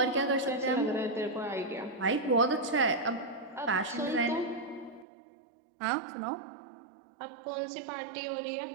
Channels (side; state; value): left; drops out; at 5.1 s